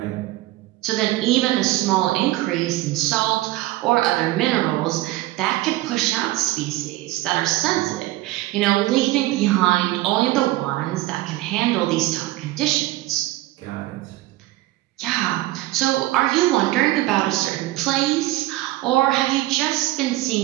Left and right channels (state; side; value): quieter; left; 17.3 dB